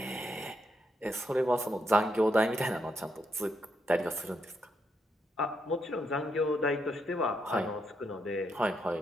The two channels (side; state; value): both; normal; correlation 0.79